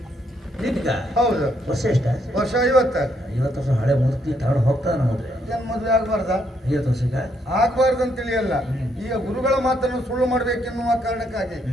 ನಿನ್ಗ ಹೌದು ವರ್ಷ ಎಷ್ಟ ವರ್ಷ 50 50 ವರ್ಷ ಹಳೆ ಮೂರ್ತಿ ತಗೊಂಡು ಹೋಗ್ತಾನ ಮದುವೆ ಏನ್ ಮದುವೆ ಆಗ್ಬಾರ್ದ 50 ವರ್ಷಕ್ಕ ಆಗ್ಬಾರ್ದು ಅಂತ ತಿಳಿಯಲ್ಲ ಈಗ ಗುರುಗಳ ಮಾತನ್ನು ಸುಳ್ಳು ಮಾಡ್ಬೇಕೆನ್ನುವ ಕಾರಣಕ್ಕಾಗಿ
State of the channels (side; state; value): both; normal; correlation 0.74